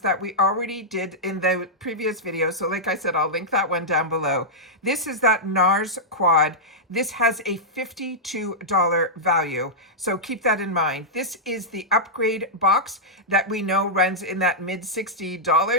that we already did in the previous video. So like I said, I'll link that one down below. This is that NARS quad. This has a $52 value, so keep that in mind. This is the upgrade box that we know runs in that mid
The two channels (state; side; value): normal; both; correlation -0.09